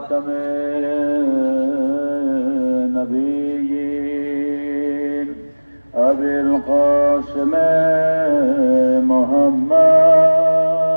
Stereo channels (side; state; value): both; inverted; correlation -1.00